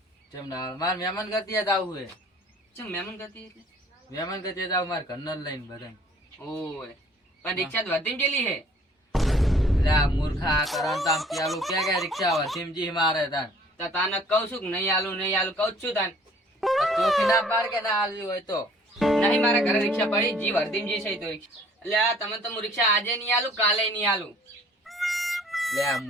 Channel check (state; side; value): normal; both; correlation 0.55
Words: ચમ ના હાલો મારે મહેમાન ગતિએ જ આવવું હે ચમ મહેમાન ગતિ એટલે મહેમાન ગતિએ જ આવું મારે ઘરના લઈને બધા ઓય પણ રિક્ષા તો વધી ગયેલી હે લે આ મૂર્ખા કરણ તામ પેલું કે રિક્ષા હોય સિમજી મારે તાન તો તાને કહું છું કે નહીં આલું કહું જ છું તાન ચોખી ના પાડ કે ના હાલવી હોય તો નહીં મારા ઘરે રિક્ષા પડી જી વર્ધીમજી છે તો રિક્ષા એટલે આ તમે તો હું રિક્ષા આજે નહીં આલું કાલે નહીં આલું લે આ